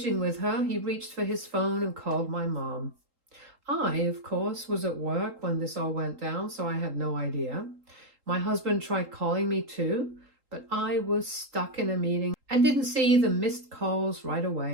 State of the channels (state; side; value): late; left; 3.8 ms